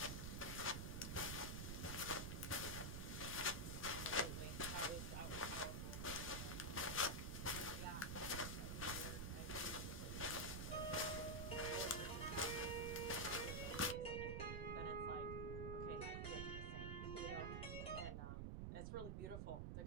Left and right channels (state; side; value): noise; right; rumble, 2 dB below the sound